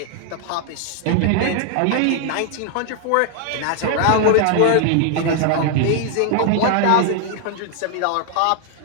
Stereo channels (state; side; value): different; both; correlation 0.00